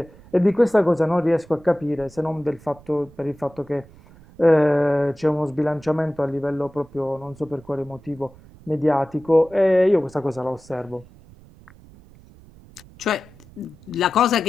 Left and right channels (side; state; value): right; noise; rumble, 24 dB below the sound